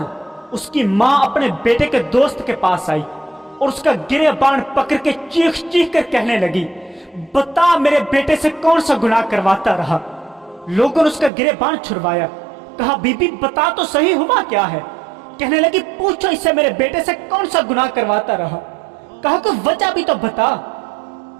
اس کی ماں اپنے بیٹے کے دوست کے پاس آئی اور اس کا گریبان پکڑ کے چیخ چیخ کر کہنے لگی، بتا میرے بیٹے سے کون سا گناہ کرواتا رہا۔ لوگوں نے اس کا گریبان چھڑوایا، کہا بی بی بتا تو صحیح ہوا کیا ہے۔ کہنے لگی پوچھو اس سے میرے بیٹے سے کون سا گناہ کرواتا رہا۔ کہا کہ وجہ بھی تو بتا۔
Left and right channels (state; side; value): drops out; left; at 11.3 s